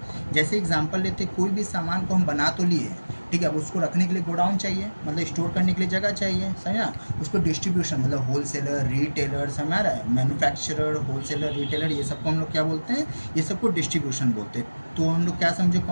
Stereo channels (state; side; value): inverted; both; correlation -1.00